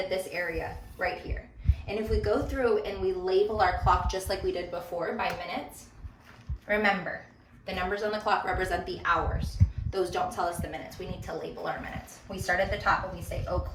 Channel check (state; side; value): identical; both; correlation 1.00